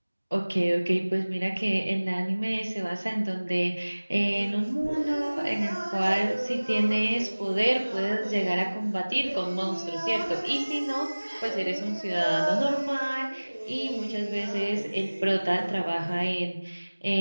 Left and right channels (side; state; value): both; inverted; correlation -1.00